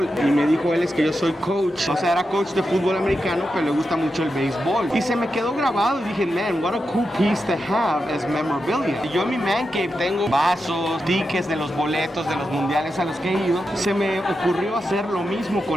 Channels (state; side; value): normal; both; correlation 0.88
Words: Y me dijo él, es que yo soy coach, o sea, era coach de fútbol americano, pero le gusta mucho el béisbol. Y se me quedó grabado y dije, man, what a cool piece to have as memorabilia. Y yo en mi man cave tengo vasos, tickets de los boletos de los mundiales a los que he ido. Se me ocurrió hacer lo mismo